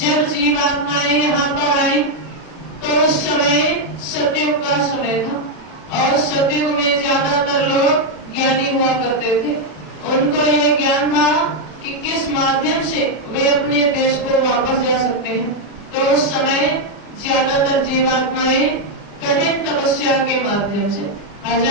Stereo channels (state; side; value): late; right; 40 ms